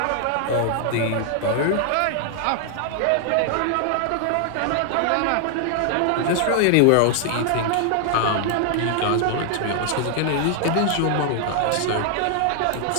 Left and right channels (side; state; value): both; different; correlation 0.00